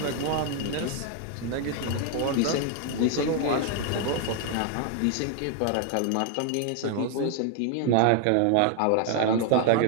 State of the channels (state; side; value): different; both; correlation 0.01